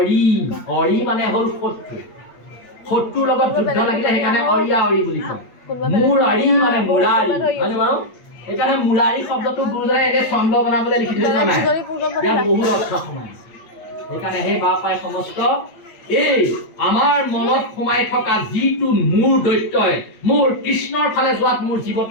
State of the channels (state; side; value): late; right; 8.6 ms